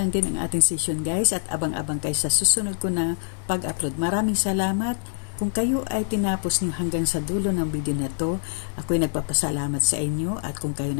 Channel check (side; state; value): right; silent; 62 dB below the other